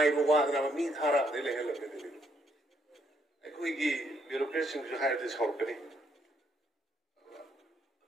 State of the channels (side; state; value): both; normal; correlation 0.72